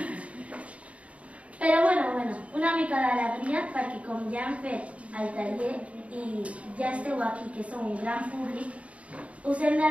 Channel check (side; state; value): left; late; 0.064 ms